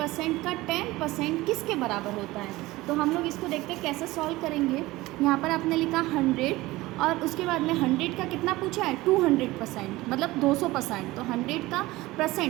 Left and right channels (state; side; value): quieter; left; 19.2 dB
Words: का 10% किसके बराबर होता है। तो हम लोग इसको देखते हैं कैसे सॉल्व करेंगे। यहाँ पर आपने लिखा 100 और उसके बाद में 100 का कितना पूछा है 200%, मतलब 200%। तो 100 का